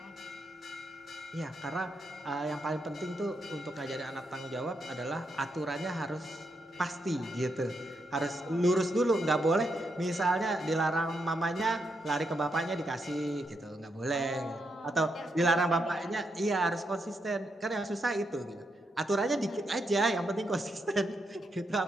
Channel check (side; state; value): both; normal; correlation 0.81